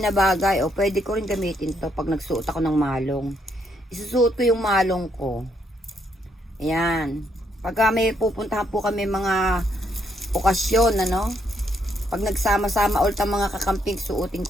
na bagay, pwede ko rin gamitin to pag nagsuot ako ng malong. Isusuot ko yung malong ko. Ayan. Pagka may pupuntahan po kami mga okasyon, pag nagsama-sama ulit ang mga kakamping, suotin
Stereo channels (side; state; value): both; normal; correlation 0.74